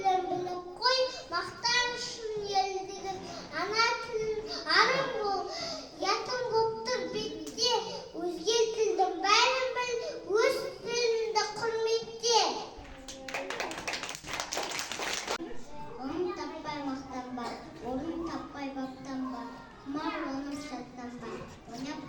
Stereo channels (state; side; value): identical; both; correlation 1.00